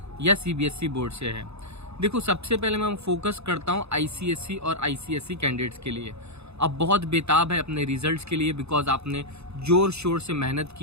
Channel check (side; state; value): left; late; 0.80 ms